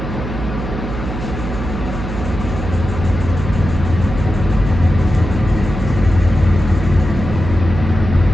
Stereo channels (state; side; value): noise; right; hum, 6 dB below the sound